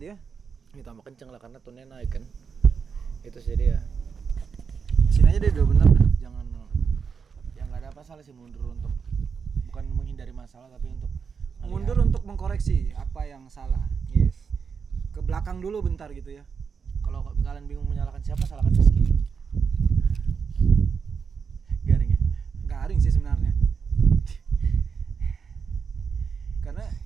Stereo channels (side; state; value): left; quieter; 6.0 dB